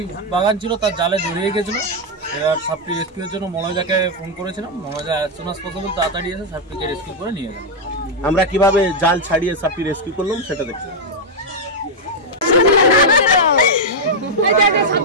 বাগান ছিল, তার জালে জড়িয়ে গেছিল। এবার সাপটি রেস্কিউর জন্য মনোজাকে ফোন করেছিলাম। মনোজা অ্যাজ সুন অ্যাজ পসিবল তাড়াতাড়ি এসে সাপটিকে রেস্কিউ করে নিয়ে গেল। আমরা কিভাবে জাল ছাড়িয়ে সাপটি রেস্কিউ করলাম সেটা দেখতে।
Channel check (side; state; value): both; normal; correlation -0.01